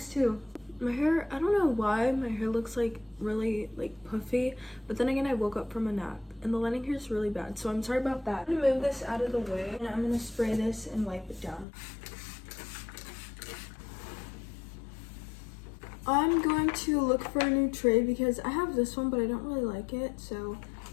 too. My hair, I don't know why my hair looks like really like puffy, but then again I woke up from a nap and the lighting here is really bad, so I'm sorry about that. I'm gonna move this out of the way and I'm gonna spray this and wipe it down. I'm going to look for a new tray because I have this one but I don't really like it, so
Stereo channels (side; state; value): right; drops out; at 11.7 s